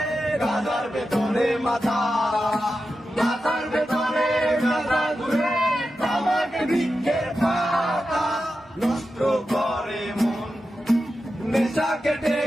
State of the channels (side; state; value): both; normal; correlation 0.91